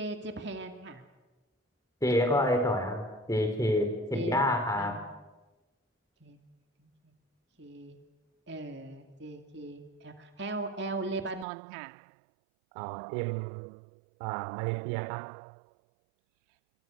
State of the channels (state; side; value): drops out; left; at 11.5 s